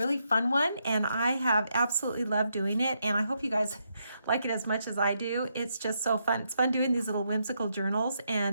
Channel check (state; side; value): inverted; both; correlation -0.79